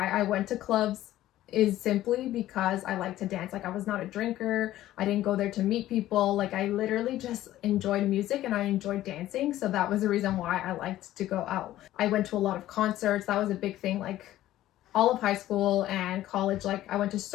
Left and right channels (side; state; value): right; quieter; 14.2 dB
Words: I went to clubs is simply because I like to dance. I was not a drinker. I didn't go there to meet people. I literally just enjoyed music and I enjoyed dancing. So that was the reason why I liked to go out. I went to a lot of concerts. That was a big thing. All of high school and college, I went to